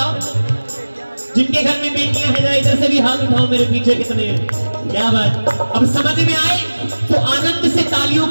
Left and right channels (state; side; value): inverted; both; correlation -1.00